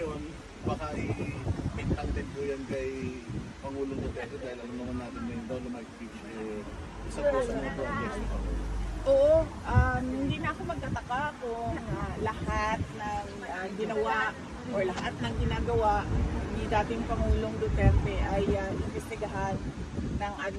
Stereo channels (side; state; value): both; identical; correlation 1.00